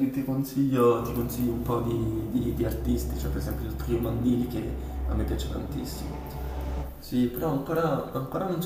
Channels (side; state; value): both; identical; correlation 1.00